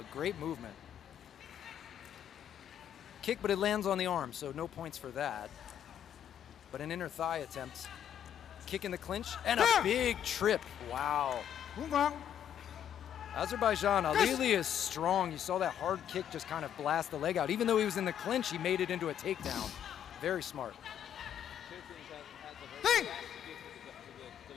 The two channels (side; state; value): right; quieter; 9.7 dB